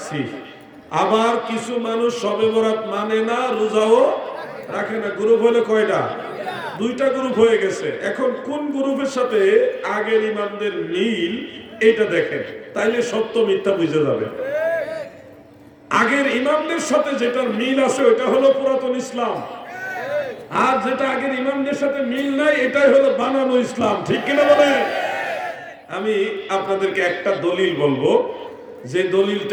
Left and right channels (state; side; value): identical; both; correlation 1.00